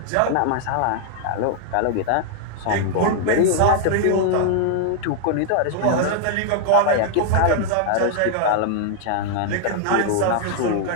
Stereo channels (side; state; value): both; different; correlation 0.00